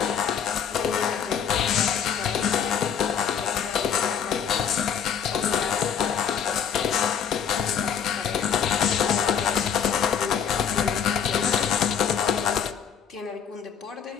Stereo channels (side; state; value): right; quieter; 7.7 dB